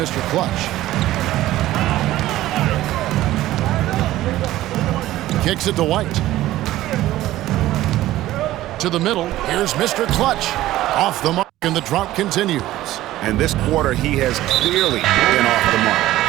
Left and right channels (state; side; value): quieter; left; 15.2 dB